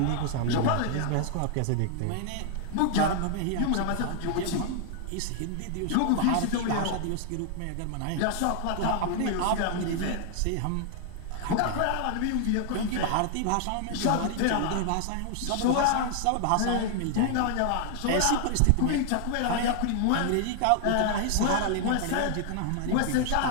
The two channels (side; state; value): both; different; correlation 0.00